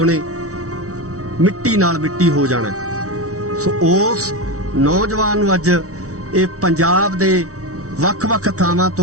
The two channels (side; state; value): left; late; 0.65 ms